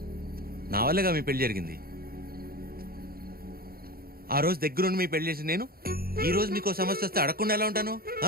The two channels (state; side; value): late; left; 0.44 ms